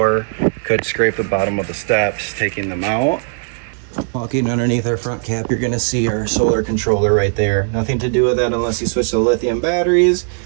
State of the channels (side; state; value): left; silent; 62 dB below the other